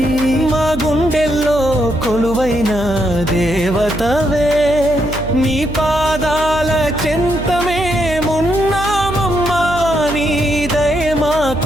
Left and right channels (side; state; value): right; noise; hum, 10 dB below the sound